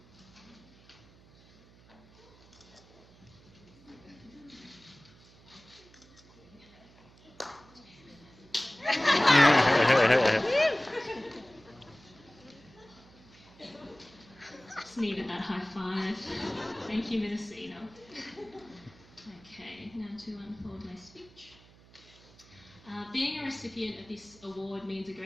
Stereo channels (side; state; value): right; noise; hum, 25 dB below the sound